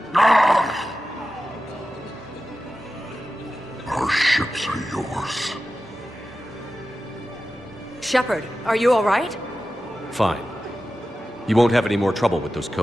Ah! Our ships are yours. Shepard, are you all right? Fine. You won't have any more trouble with those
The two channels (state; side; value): normal; both; correlation 0.93